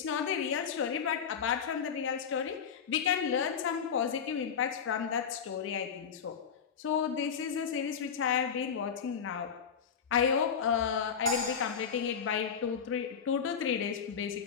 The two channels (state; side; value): quieter; right; 7.1 dB